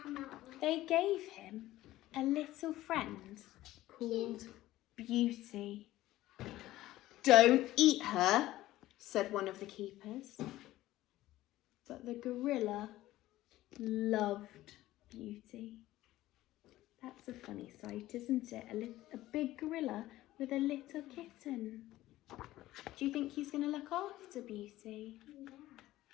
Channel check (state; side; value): quieter; right; 15.8 dB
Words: They gave him a little friend called Beauty. Don't eat her, said one of the keepers. But the gorilla loved Beauty. That's a funny sight, isn't it? A big gorilla with a little kitten. Do you think he's going to look after Beauty? Yeah.